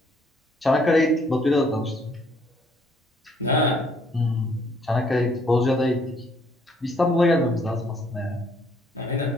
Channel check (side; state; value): both; normal; correlation 0.65